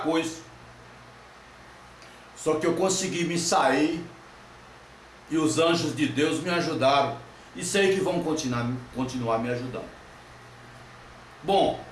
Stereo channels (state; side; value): identical; both; correlation 1.00